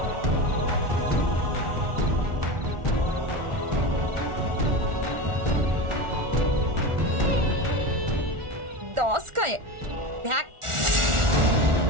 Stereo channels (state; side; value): late; left; 1.4 ms